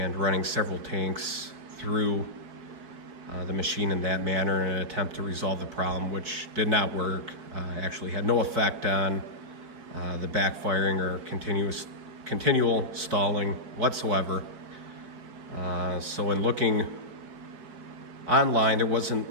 running several tanks through the machine in that manner in an attempt to resolve the problem, which did not work. Actually had no effect on the backfiring or continual stalling whatsoever. So in looking online, there wasn't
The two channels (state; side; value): late; left; 4.7 ms